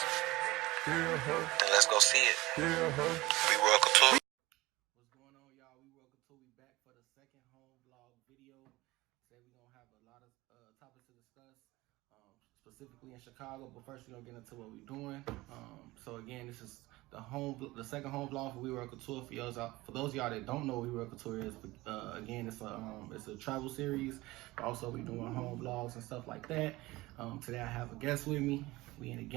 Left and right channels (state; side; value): quieter; left; 19.8 dB